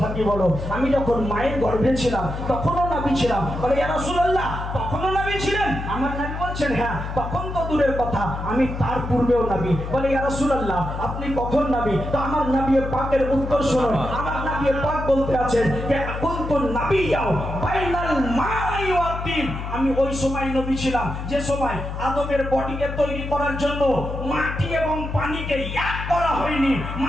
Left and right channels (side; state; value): left; noise; hum, 6 dB below the sound